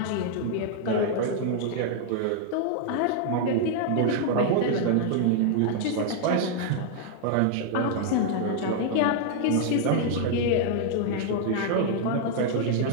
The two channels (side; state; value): both; different; correlation 0.00